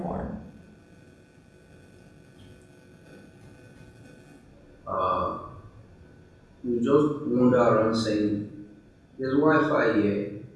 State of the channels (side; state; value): both; identical; correlation 1.00